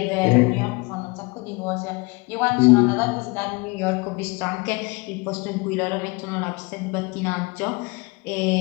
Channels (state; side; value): quieter; right; 26.8 dB